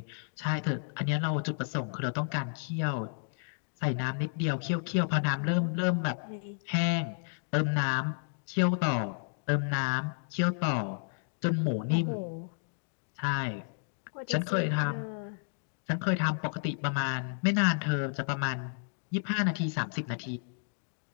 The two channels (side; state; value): right; silent; digital silence